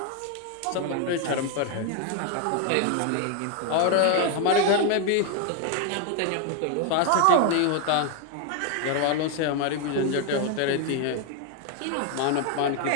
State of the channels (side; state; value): both; different; correlation 0.01